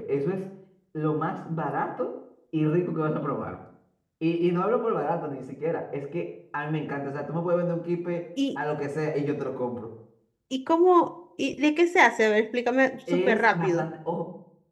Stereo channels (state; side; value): identical; both; correlation 1.00